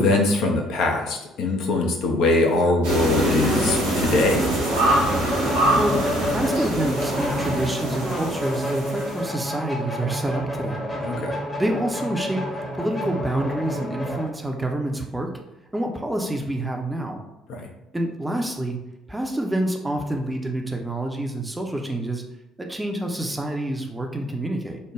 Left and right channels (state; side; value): normal; both; correlation 0.66